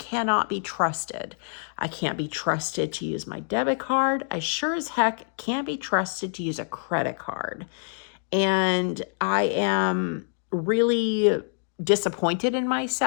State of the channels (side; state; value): right; silent; digital silence